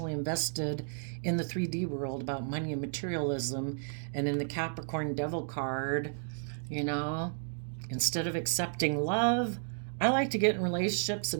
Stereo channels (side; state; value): left; silent; digital silence